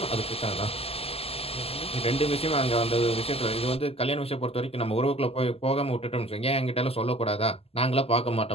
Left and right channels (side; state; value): right; late; 0.29 ms